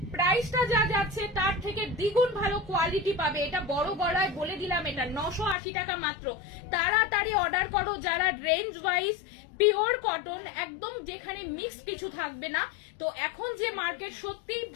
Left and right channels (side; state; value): right; drops out; at 5.6 s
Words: প্রাইসটা যা যাচ্ছে তার থেকে দ্বিগুণ ভালো কোয়ালিটি পাবে, এটা বড় গলায় বলে দিলাম। এটা 980 টাকা মাত্র। তাড়াতাড়ি অর্ডার করো যারা রেঞ্জ ওয়াইজ পিওর কটন, একদম যেখানে মিক্স কিছু থাকবে না। তো এখন যে মার্কেট সত্যি